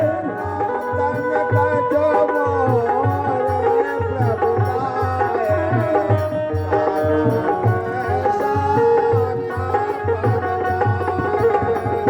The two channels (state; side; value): identical; both; correlation 1.00